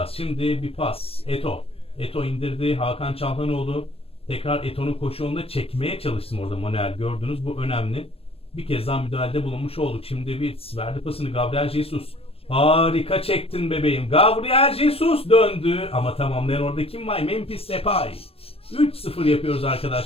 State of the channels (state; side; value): late; right; 0.28 ms